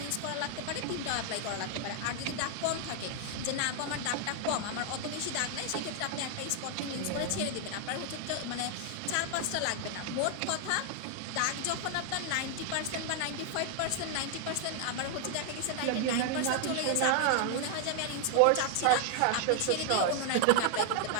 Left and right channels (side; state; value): both; different; correlation 0.00